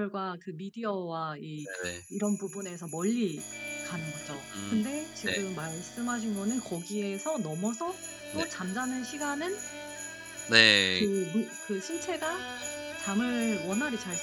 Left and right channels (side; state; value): both; identical; correlation 1.00